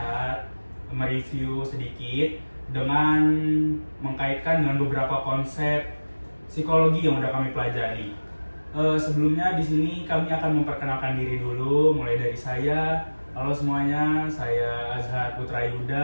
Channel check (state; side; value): inverted; both; correlation -1.00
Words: mereview sedikit dengan mengkaitkan dengan beberapa konsep psikologi yang udah kami pelajari. Sebelumnya di sini kami akan memperkenalkan diri dulu, mulai dari saya. Halo semuanya, saya Azhar Putra